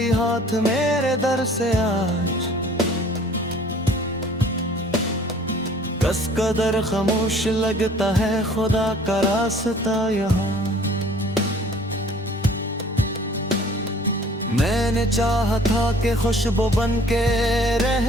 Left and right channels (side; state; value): both; normal; correlation 0.52